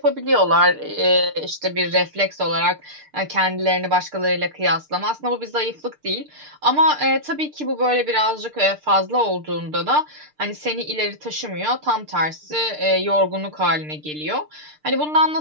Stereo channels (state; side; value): late; left; 6.6 ms